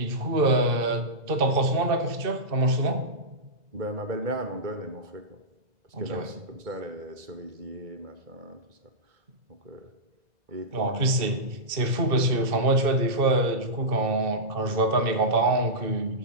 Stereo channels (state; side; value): late; left; 2.0 ms